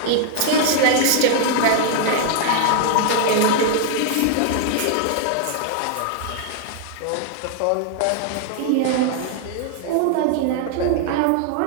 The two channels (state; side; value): different; both; correlation 0.00